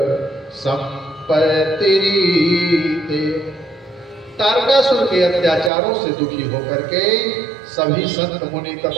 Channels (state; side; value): drops out; left; at 5.7 s